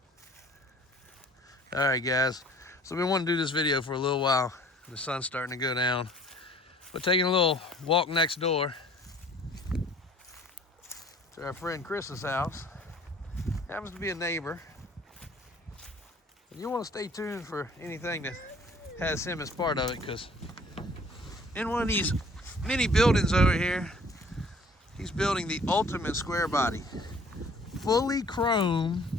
All right, guys. So we want to do this video for a little while. The sun's starting to go down. But taking a little walk next door to our friend Chris's house. Happens to be a neighbor. And you want to stay tuned for anything that has him as part of it, because in one of these mini buildings over here, he's building the ultimate square body. Fully chrome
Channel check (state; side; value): normal; both; correlation 0.53